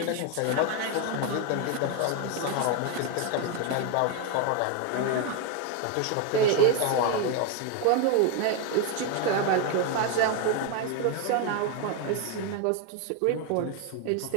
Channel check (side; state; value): both; different; correlation 0.01